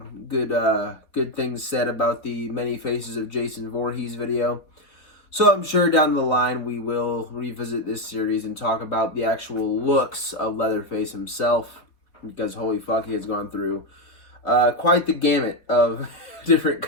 things said about the Many Faces of Jason Voorhees video. So I'm sure down the line we will revisit this series and talk about the actual looks of Leatherface himself, because holy fuck, he has gone through quite the gamut of different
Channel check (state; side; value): late; right; 4.4 ms